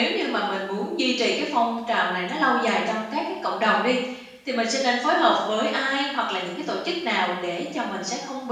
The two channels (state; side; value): identical; both; correlation 1.00